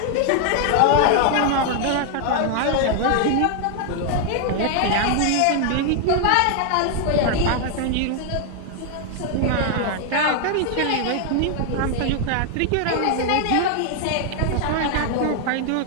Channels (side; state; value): both; different; correlation 0.00